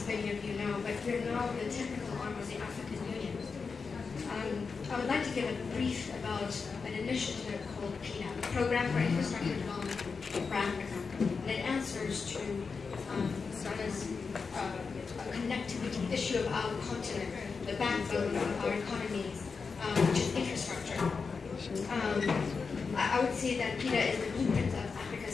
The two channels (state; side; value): quieter; right; 5.0 dB